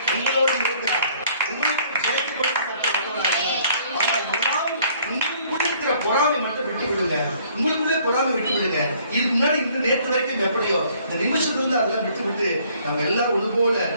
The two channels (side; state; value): both; inverted; correlation -0.60